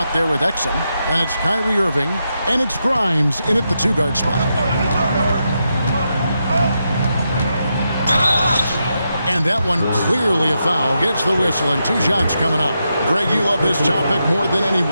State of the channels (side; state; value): both; inverted; correlation -0.85